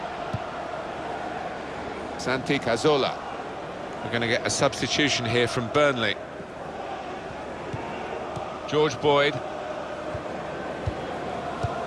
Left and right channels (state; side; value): identical; both; correlation 1.00